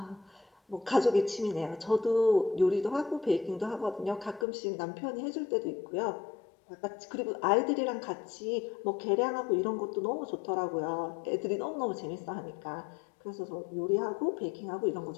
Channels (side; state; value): right; drops out; at 4.5 s